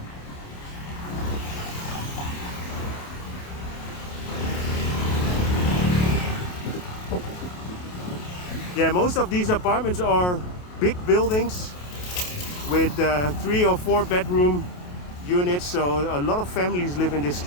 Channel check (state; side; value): late; right; 28 ms